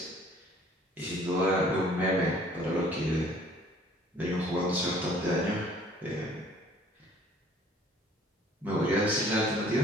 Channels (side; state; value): both; normal; correlation 0.55